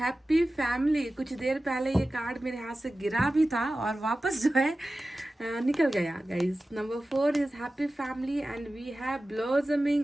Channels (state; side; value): normal; both; correlation 0.95